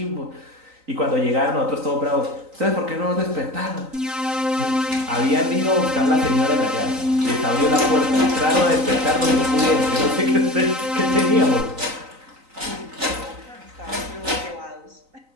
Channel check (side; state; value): left; late; 3.9 ms